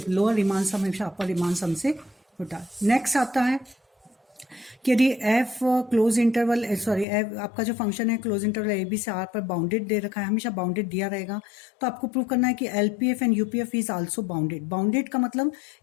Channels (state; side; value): drops out; right; at 7.1 s